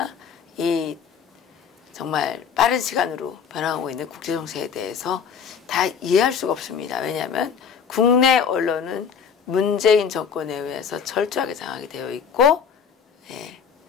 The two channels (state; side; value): quieter; right; 6.9 dB